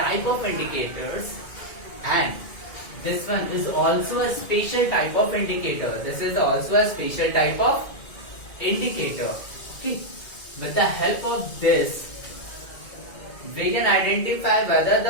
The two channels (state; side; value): late; right; 2.1 ms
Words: of indicators, and this one is also a special type of indicator. This is also a special type of indicator. Okay. With the help of this, we can identify whether